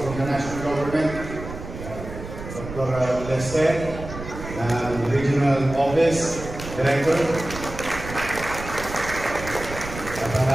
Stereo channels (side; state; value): right; noise; rumble, 10 dB below the sound